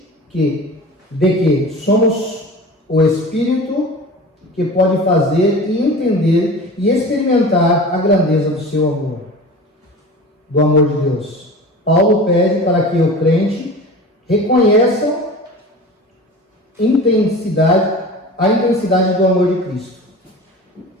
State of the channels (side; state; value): both; normal; correlation 0.36